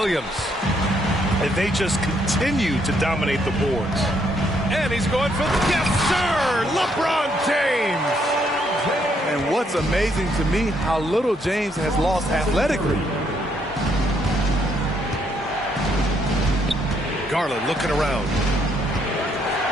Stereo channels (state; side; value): normal; both; correlation 0.72